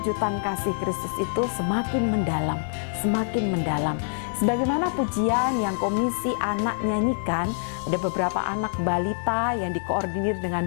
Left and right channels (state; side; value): silent; right; digital silence